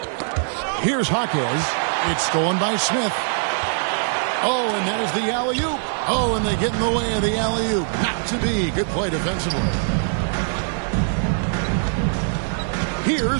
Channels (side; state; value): left; silent; 56 dB below the other